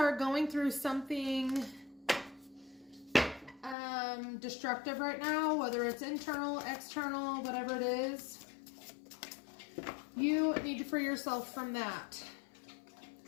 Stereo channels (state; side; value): drops out; right; at 3.8 s